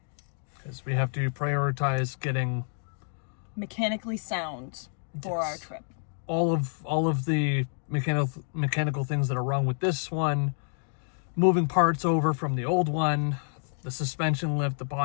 because we have to prioritize getting mechanically sound for our trip. All of the mechanical things that are wrong with this one, moving parts over from the old one, the suspension lift, the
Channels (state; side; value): silent; right; digital silence